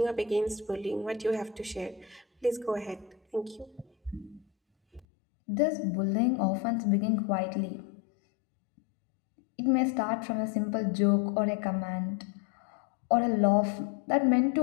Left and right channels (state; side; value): drops out; right; at 5.1 s